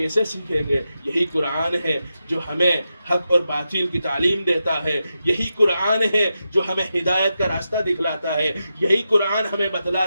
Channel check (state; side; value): inverted; both; correlation -0.88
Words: سیکھیں گے؟ یہی قرآن ہے جو ہمیں حق اور باطل کی تعلیم دیتا ہے، یہی قرآن ہے جو ہمیں ہدایت کا راستہ دکھلاتا ہے، یہی قرآن ہمیں